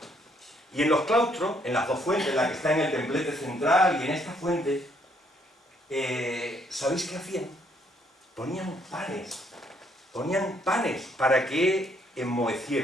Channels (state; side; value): normal; both; correlation 0.69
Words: Y en los claustros, en las 2 fuentes, la que está en el templete central y en esta fuente, ¿sabéis qué hacían? Ponían panes para que